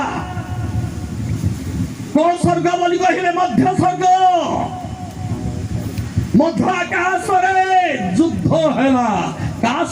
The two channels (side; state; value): both; identical; correlation 1.00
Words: କୋଉ ସ୍ୱର୍ଗ ବୋଲି କହିଲେ? ମଧ୍ୟ ସ୍ୱର୍ଗ। ମଧ୍ୟ ଆକାଶରେ ଯୁଦ୍ଧ ହେଲା। କାହା